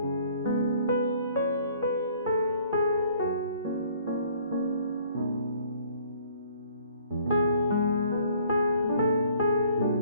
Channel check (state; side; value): inverted; both; correlation -0.58